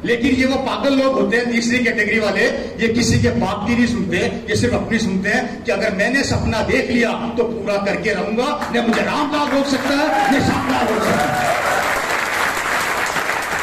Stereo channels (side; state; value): both; identical; correlation 1.00